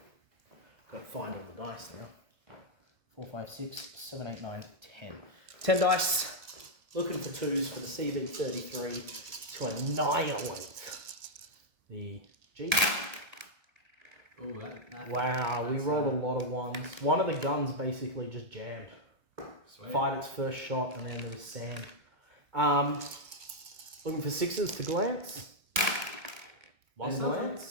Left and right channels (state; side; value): late; left; 1.8 ms